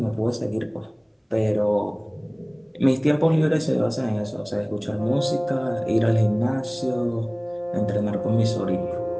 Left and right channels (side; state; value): both; identical; correlation 1.00